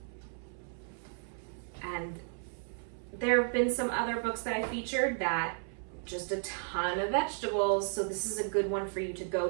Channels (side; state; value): left; silent; 55 dB below the other